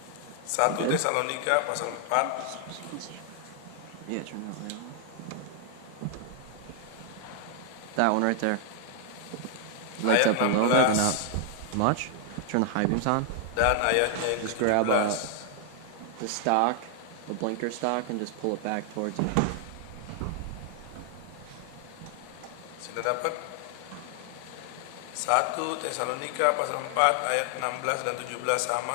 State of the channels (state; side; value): different; both; correlation 0.00